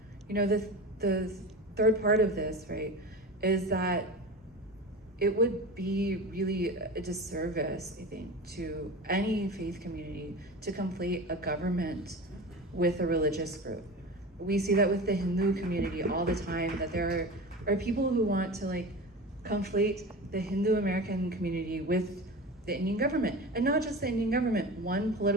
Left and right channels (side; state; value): both; normal; correlation 0.30